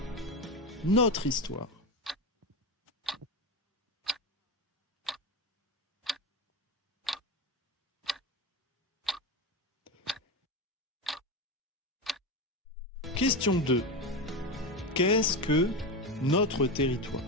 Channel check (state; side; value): normal; both; correlation 0.18